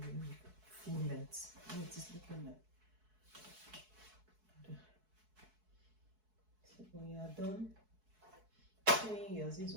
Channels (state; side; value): late; left; 4.6 ms